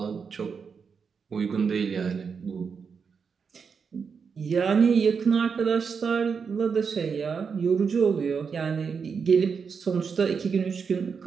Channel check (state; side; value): quieter; left; 5.9 dB